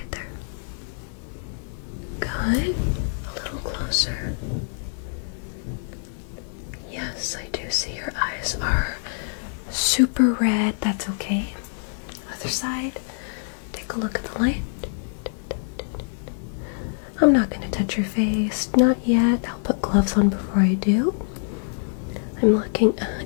there? Good. A little closer. Yes, I do see your eyes are super red. That's okay. Other side. Take a look at the light. I'm not going to touch your face. Not yet. I'll put gloves on before I do. I'm looking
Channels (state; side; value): silent; right; digital silence